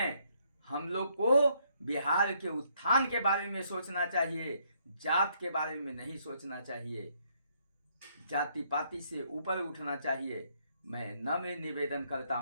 हम लोग को बिहार के उत्थान के बारे में सोचना चाहिए, जात के बारे में नहीं सोचना चाहिए, जाति पाति से ऊपर उठना चाहिए। मैं नम्र निवेदन करता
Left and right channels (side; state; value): both; inverted; correlation -0.70